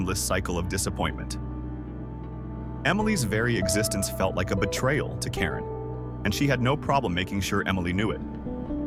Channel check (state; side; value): identical; both; correlation 1.00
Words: cycle of disappointment. Emily's very existence felt like a betrayal to Karen, and she had no problem making sure Emily knew it.